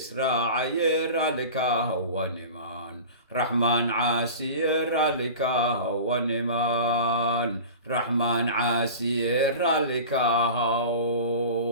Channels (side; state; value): both; inverted; correlation -0.35